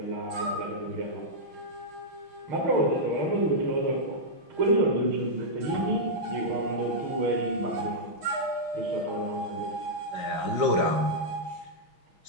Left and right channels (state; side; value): late; left; 5.6 ms